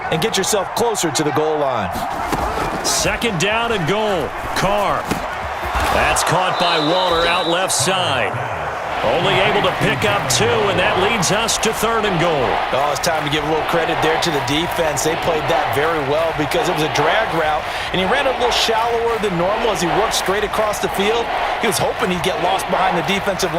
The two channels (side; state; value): both; identical; correlation 1.00